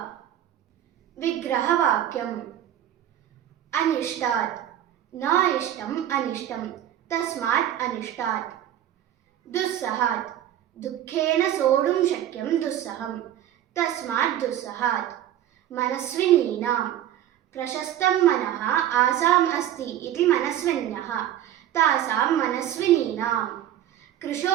ವಿಗ್ರಹವಾಕ್ಯಂ: ಅನಿಷ್ಟಾತ್ ನ ಇಷ್ಟಂ ಅನಿಷ್ಟಂ ತಸ್ಮಾತ್ ಅನಿಷ್ಟಾತ್. ದುಸ್ಸಹಾತ್ ದುಃಖೇನ ಸೋಢುಂ ಶಕ್ಯಂ ದುಸ್ಸಹಂ ತಸ್ಮಾತ್ ದುಸ್ಸಹಾತ್. ಮನಸ್ವಿನೀನಾಂ ಪ್ರಶಸ್तं ಮನಃ ಆಸಾಂ ಅಸ್ತಿ ಇತಿ ಮನಸ್ವಿನ್ಯಃ ತಾಸಾಂ ಮನಸ್ವಿನೀನಾಂ.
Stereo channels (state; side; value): quieter; left; 11.6 dB